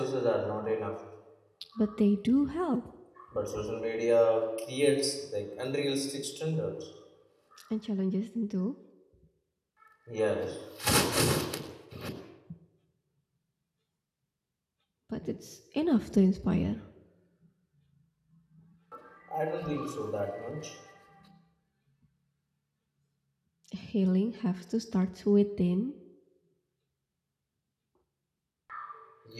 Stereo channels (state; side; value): identical; both; correlation 1.00